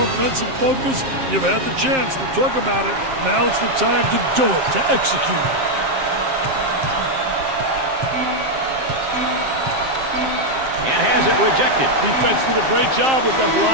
offensive focus, you've had the chance to talk about it. Now it's the time to do it, to execute. And has it rejected. Defense did a great job with that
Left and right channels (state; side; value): late; left; 7.6 ms